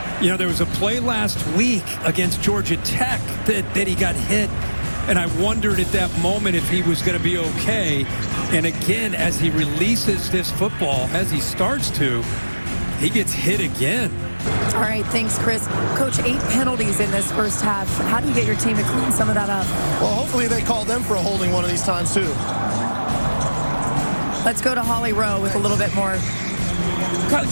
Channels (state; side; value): inverted; both; correlation -1.00